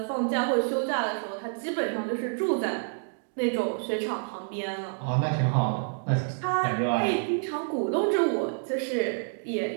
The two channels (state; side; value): silent; left; digital silence